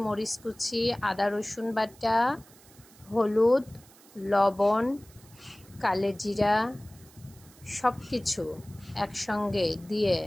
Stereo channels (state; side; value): noise; right; hiss, 25 dB below the sound